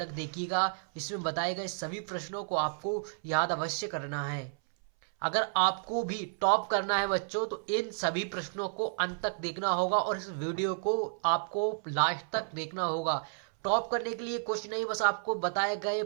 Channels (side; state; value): left; silent; 57 dB below the other